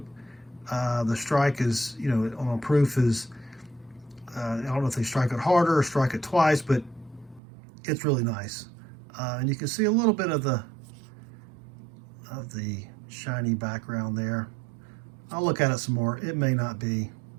The strike is, you know, on a proof is, I don't know if they strike it harder or strike it twice, but it's really nice. And you can see a little bit of the shiny background there. I'll look at it some more. It may not be.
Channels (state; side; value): drops out; left; at 7.4 s